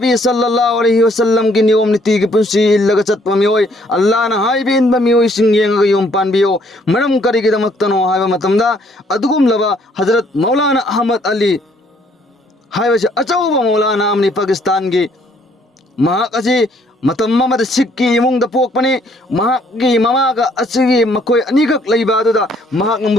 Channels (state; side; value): normal; both; correlation 0.65